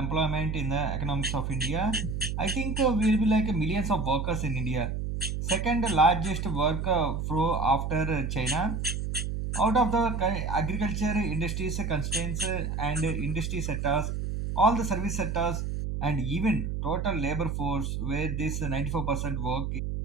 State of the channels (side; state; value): right; noise; hum, 2 dB below the sound